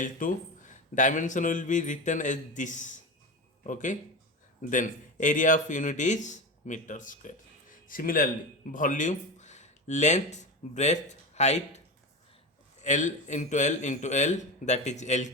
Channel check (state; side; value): normal; both; correlation 0.23